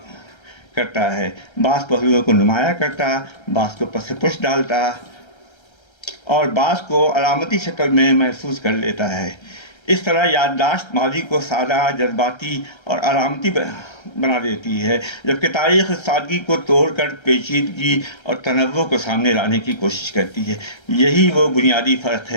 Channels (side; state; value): right; late; 1.3 ms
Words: کرتا ہے، بعض پہلوؤں کو نمایاں کرتا، بعض کو پس پش ڈالتا اور بعض کو علامتی شکل میں محفوظ کر لیتا ہے۔ اس طرح یادداشت ماضی کو سادہ، جذباتی اور علامتی بنا دیتی ہے، جبکہ تاریخ اس سادگی کو توڑ کر پیچیدگی اور تنوع کو سامنے لانے کی کوشش کرتی ہے۔ یہی وہ بنیادی فرق